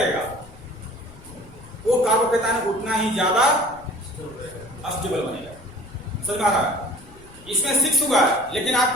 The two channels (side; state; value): left; noise; rumble, 21 dB below the sound